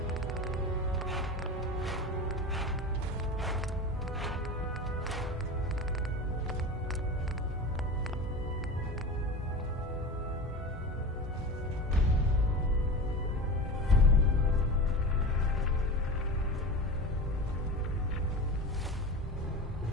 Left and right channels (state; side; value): normal; both; correlation 0.30